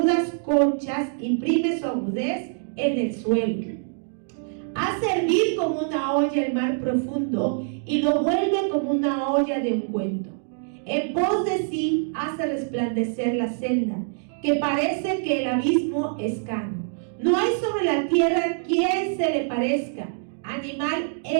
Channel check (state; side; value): silent; left; digital silence